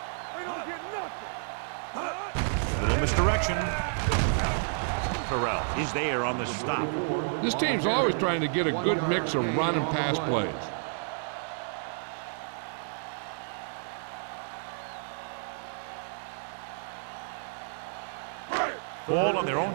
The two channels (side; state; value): left; silent; digital silence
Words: A little misdirection. Terrell is there on the stop. This team's always trying to get a good mix of run and pass plays. Ball on their own